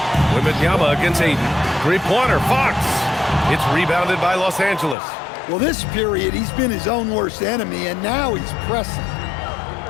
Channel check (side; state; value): right; drops out; at 5.0 s